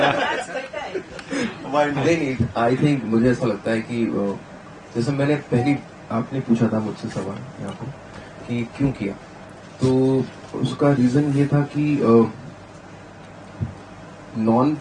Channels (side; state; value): both; identical; correlation 1.00